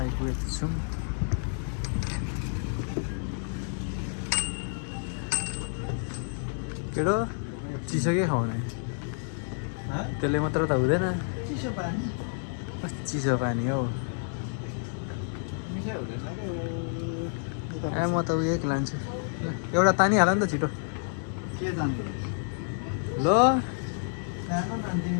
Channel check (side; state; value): right; silent; digital silence